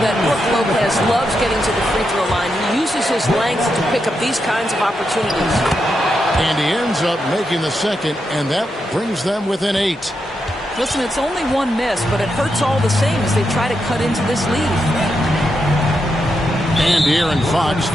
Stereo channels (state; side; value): normal; both; correlation 0.84